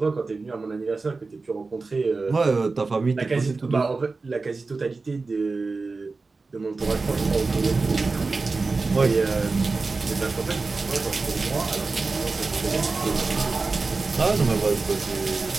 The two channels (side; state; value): left; quieter; 3.9 dB